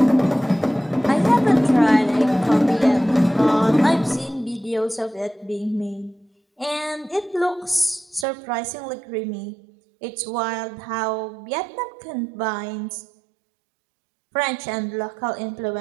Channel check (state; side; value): drops out; left; at 8.2 s